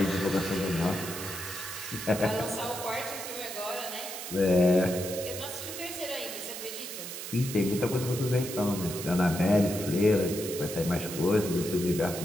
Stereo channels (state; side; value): noise; right; hiss, 8 dB below the sound